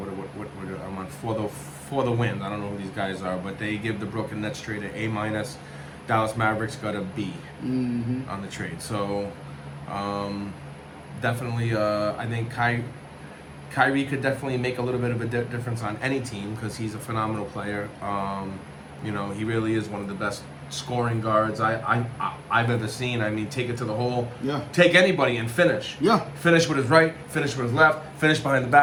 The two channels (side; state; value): both; identical; correlation 1.00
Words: I'm on for the win. I don't know who these guys are, but they give the Brooklyn Nets trade an A-. Dallas Mavericks got a B on the trade. So definitely, I think Kyrie could definitely make a little bit of a difference on any team because he's a phenomenal player. He really is one of the best scoring guards I've ever seen. I mean, take it to the hole. Yeah. Take anybody and finish. Yeah. Finish with his right, finish with his left, finish behind the